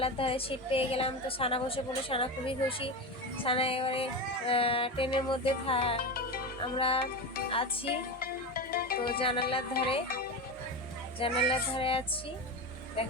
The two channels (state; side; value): normal; both; correlation 0.21